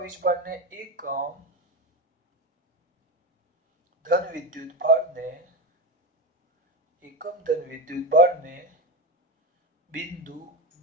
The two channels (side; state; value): both; normal; correlation 0.18